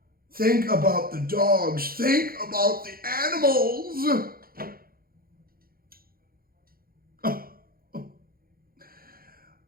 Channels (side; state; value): left; late; 0.43 ms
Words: Think about the dogs. Think about the animals.